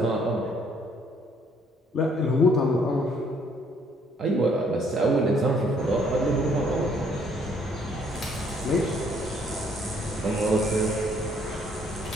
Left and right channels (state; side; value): normal; both; correlation 0.64